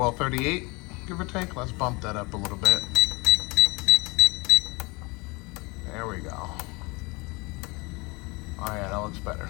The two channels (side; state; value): right; quieter; 26.6 dB